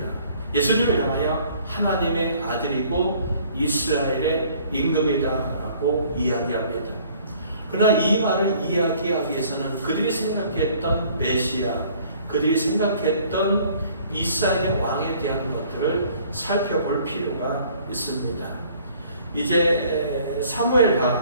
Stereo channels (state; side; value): inverted; both; correlation -0.56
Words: 예수님을 향하여 하나님의 아들이고 이스라엘의 임금이다라고 이야기합니다. 그러나 이 말을 이야기하기 위해서는 그들이 생각했던 메시아, 그들이 생각했던 이스라엘의 왕에 대한 것들을 살펴볼 필요가 있습니다. 이제